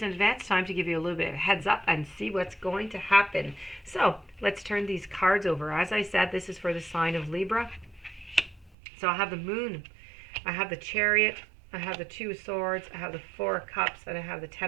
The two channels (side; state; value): left; drops out; at 8.7 s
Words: in advance time to give you a little bit of a heads up and see what's going to happen. So let's turn these cards over. As I said, this is for the sign of Libra. So I have the Moon, I have the Chariot, I have the Two of Swords, I have the Four of Cups, and I have the